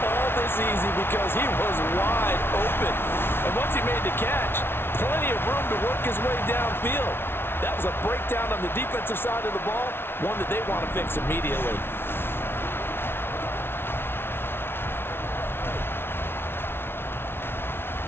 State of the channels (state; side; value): late; right; 0.11 ms